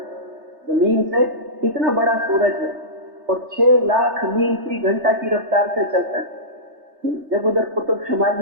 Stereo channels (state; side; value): late; left; 3.3 ms